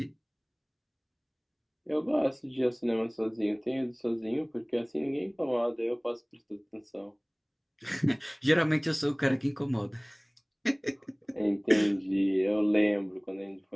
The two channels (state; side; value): identical; both; correlation 1.00